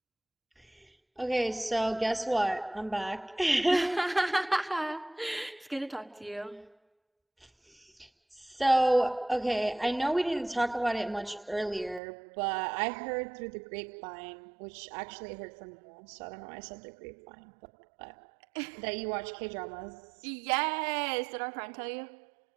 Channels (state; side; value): drops out; left; at 12.0 s